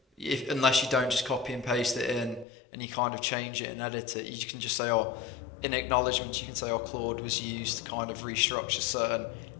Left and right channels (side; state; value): right; drops out; at 2.5 s